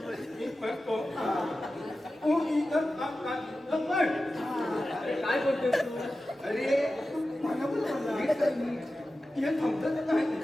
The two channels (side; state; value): both; normal; correlation 0.94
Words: म्हणतो तू इथं पण अरे काय बोलतोय तू? अरे मला पण म्हणला हे थांबतच नाही.